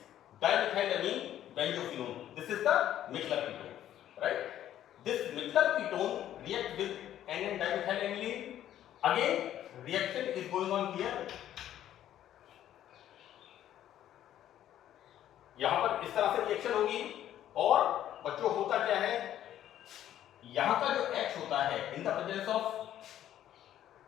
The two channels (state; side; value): quieter; right; 11.7 dB